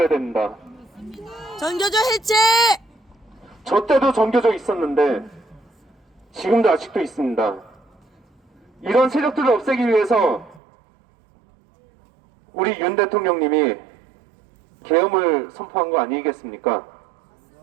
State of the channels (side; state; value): left; drops out; at 10.6 s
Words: 됩니다. 전교조 해체. 저 때도 전교조 있었는데 지금도 아직도 있습니다. 이런 세력들을 없애기 위해서 우리 윤 대통령님이 계엄을 선포한 거 아니겠습니까?